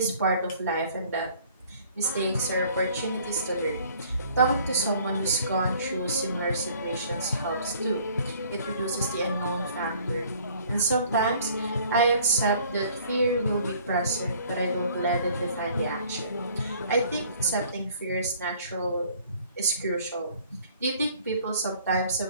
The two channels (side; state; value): both; inverted; correlation -0.56